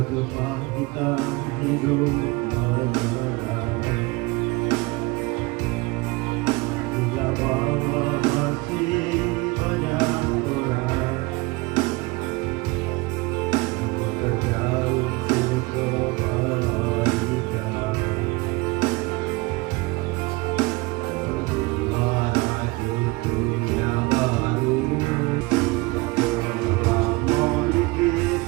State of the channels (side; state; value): left; quieter; 23.8 dB